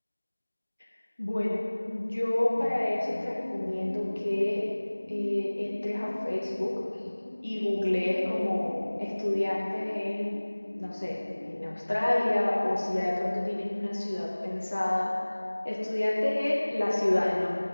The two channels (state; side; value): inverted; both; correlation -1.00